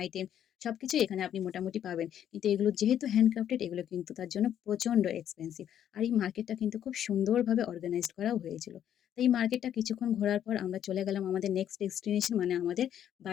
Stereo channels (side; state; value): right; quieter; 10.1 dB